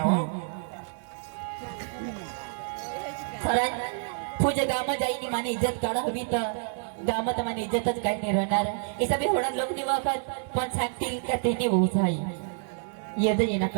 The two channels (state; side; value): silent; left; digital silence